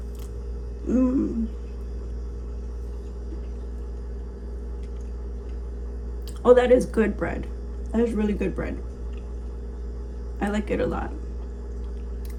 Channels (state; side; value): identical; both; correlation 1.00